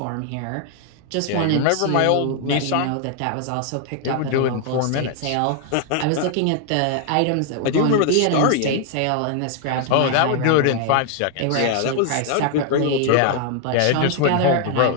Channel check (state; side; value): different; both; correlation 0.00